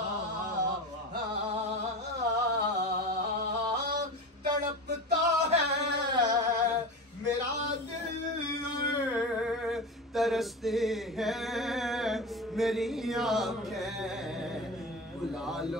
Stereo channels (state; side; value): normal; both; correlation 0.27